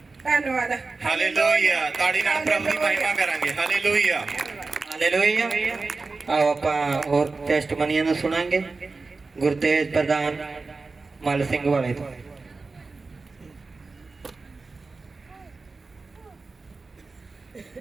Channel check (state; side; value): quieter; left; 3.9 dB